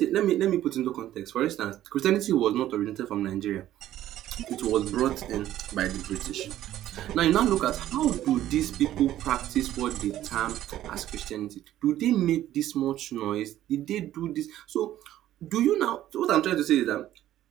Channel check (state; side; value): quieter; left; 13.0 dB